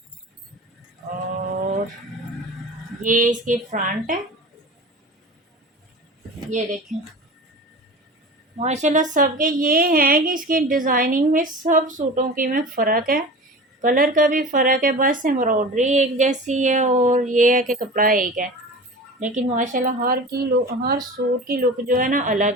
और ये इसकी फ्रंट है। ये देखें माशाल्लाह सबके ये है कि इसकी डिज़ाइनिंग में सब सूटों की में फ़र्क है, कलर का भी फ़र्क है, बस एम्ब्रॉयडरी एक जैसी है और ये है कि कपड़ा एक है, लेकिन माशाल्लाह हर सूट की लुक जो है ना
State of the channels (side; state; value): both; normal; correlation 0.35